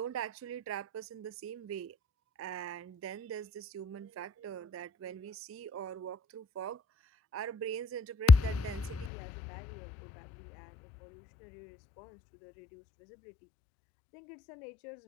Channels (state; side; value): drops out; right; at 9.1 s